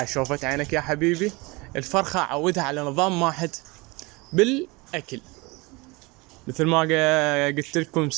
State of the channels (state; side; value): quieter; left; 25.1 dB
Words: شوفت عينك يا حبيبي، الفرخة اعودها على نظام واحد بالاكل. مثل ما قلت لكم